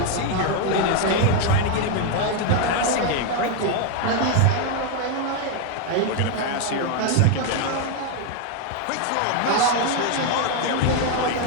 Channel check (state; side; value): different; both; correlation 0.01